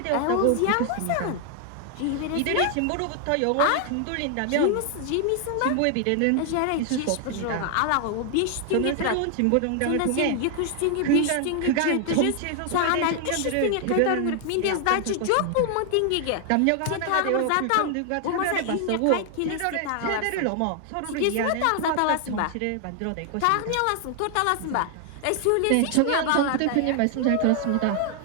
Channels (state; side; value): different; both; correlation 0.00